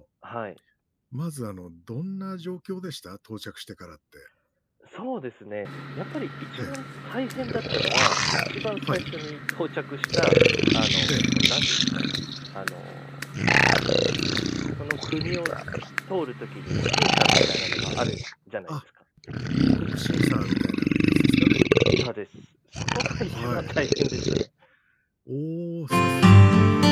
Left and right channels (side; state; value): both; identical; correlation 1.00